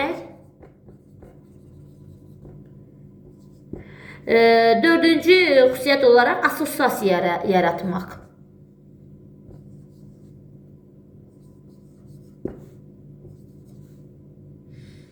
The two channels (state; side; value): identical; both; correlation 1.00